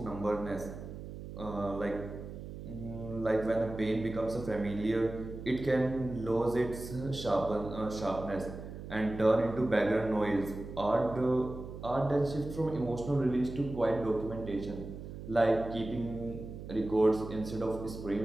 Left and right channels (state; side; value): noise; right; hum, 10 dB below the sound